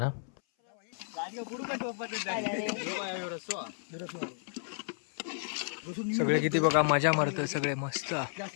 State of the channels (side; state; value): right; silent; 56 dB below the other